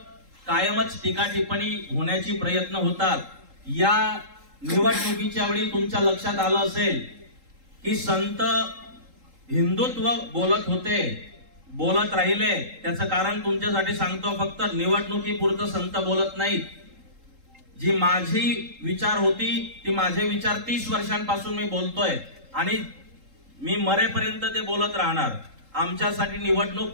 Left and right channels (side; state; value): left; late; 3.8 ms